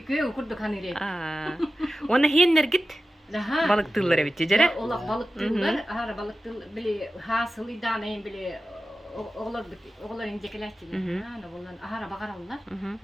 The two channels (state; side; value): normal; both; correlation 0.94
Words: köy kurduk hanire. Ona hiyenler git. Daha Balık tılları bitti jere. Ola balık tıllar, ahara balık tıl bili hasıl idane bili oğlar incekeler çiğ. Ana bollan ahara bakarallar.